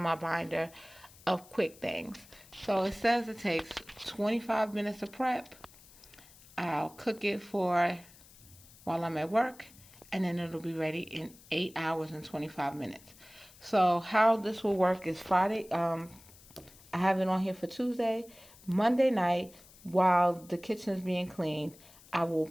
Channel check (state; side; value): noise; left; hiss, 23 dB below the sound